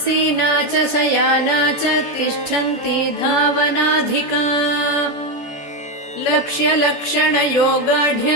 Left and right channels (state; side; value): late; right; 14 ms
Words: च शयाना च तिष्ठन्ती धावनाधिका